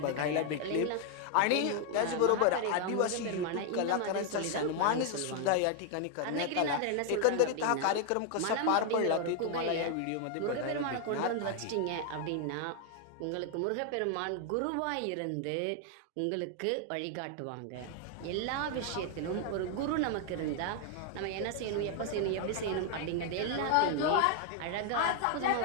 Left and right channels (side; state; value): both; different; correlation 0.00